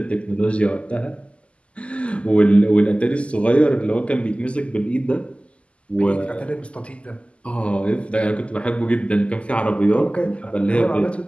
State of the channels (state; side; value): late; right; 0.057 ms